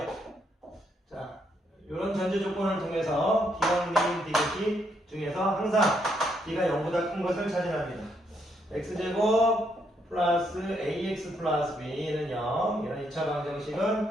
자, 이런 전제 조건을 통해서 기억, 미인, 디귿 중에서 항상 D가 0보다 큰 것을 찾으랍니다. x제곱 플러스 ax 플러스 b는 0. 이런 2차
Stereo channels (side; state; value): both; normal; correlation 0.75